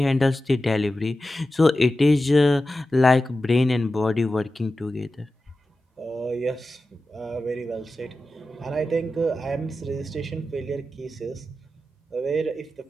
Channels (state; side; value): normal; both; correlation 0.93